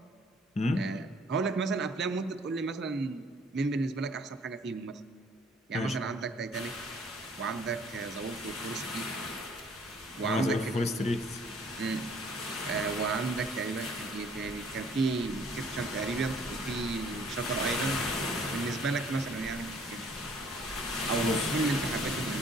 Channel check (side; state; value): both; normal; correlation 0.58